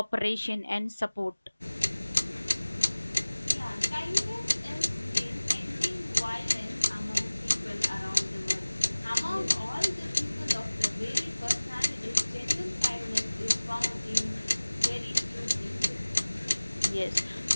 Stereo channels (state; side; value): inverted; both; correlation -1.00